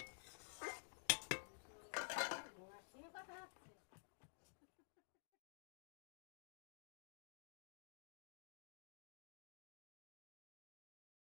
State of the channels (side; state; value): right; silent; digital silence